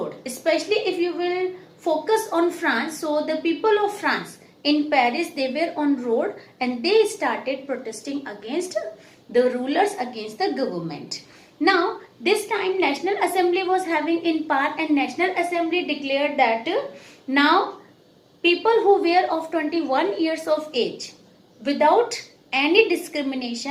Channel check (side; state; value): both; identical; correlation 1.00